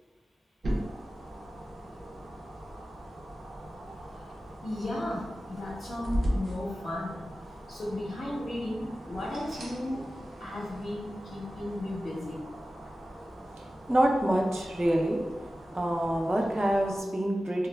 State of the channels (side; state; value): both; normal; correlation 0.95